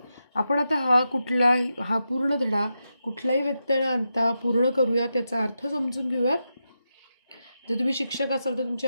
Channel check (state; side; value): inverted; both; correlation -0.88